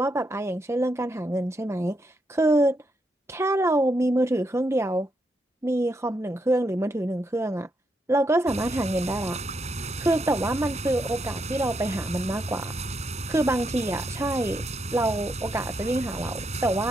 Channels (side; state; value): both; normal; correlation 0.80